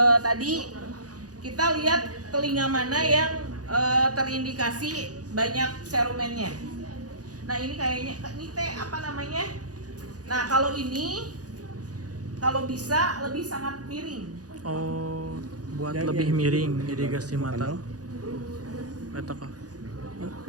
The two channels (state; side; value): late; left; 0.68 ms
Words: tadi, kita lihat telinga mana yang terindikasi banyak serumennya. Nah ini kayaknya, ini teh apa namanya? Nah kalau ini, kalau bisa lebih sangat miring. Oh, buat lebih miring irigasi mata. Eta kah?